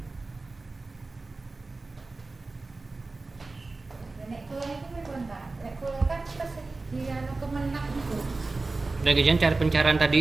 Udah kejadian cari pencarian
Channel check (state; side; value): quieter; left; 3.5 dB